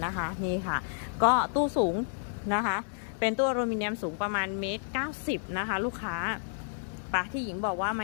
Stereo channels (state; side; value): silent; right; digital silence